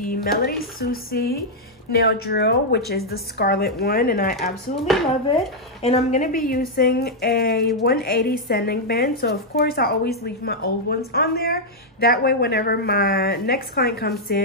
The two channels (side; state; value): both; normal; correlation -0.04